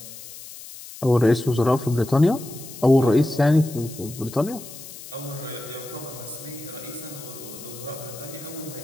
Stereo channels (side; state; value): left; noise; hiss, 15 dB below the sound